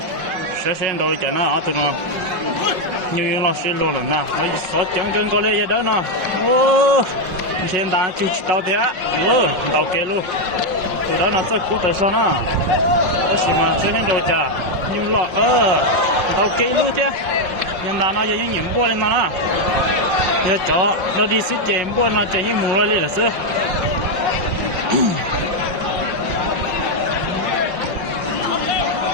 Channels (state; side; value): late; left; 5.4 ms